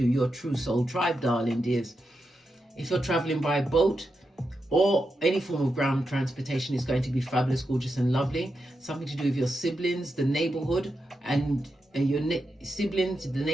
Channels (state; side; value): normal; both; correlation 0.87